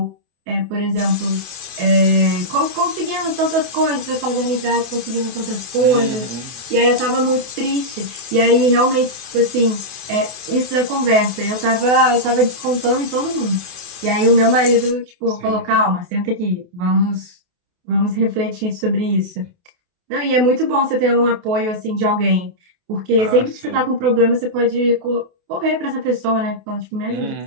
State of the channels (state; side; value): late; left; 28 ms